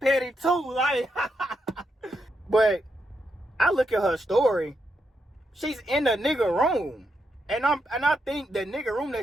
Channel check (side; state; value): both; normal; correlation 0.82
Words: too. Like, but I look at her story. She's in the nigga room. And I think the nigga room